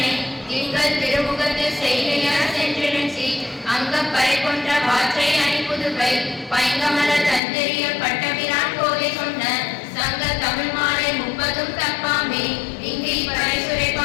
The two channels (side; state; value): right; drops out; at 7.4 s